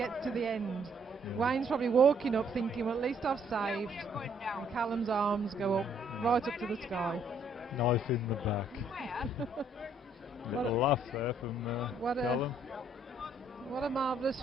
to the end, Wayne's probably walking up thinking, well, at least I've saved. And Callum's arms go up, right up to the sky. Knife in the back. Little laugh there from Callum. What a marvellous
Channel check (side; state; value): both; normal; correlation 0.66